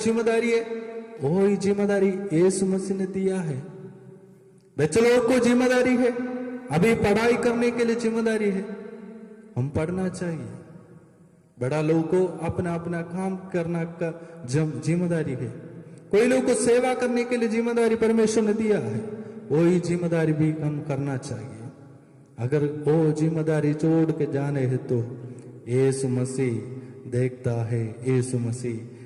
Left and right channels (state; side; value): identical; both; correlation 1.00